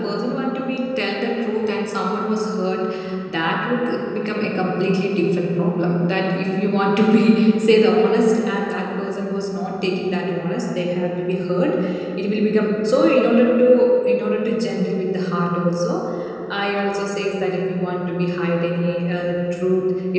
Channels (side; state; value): both; identical; correlation 1.00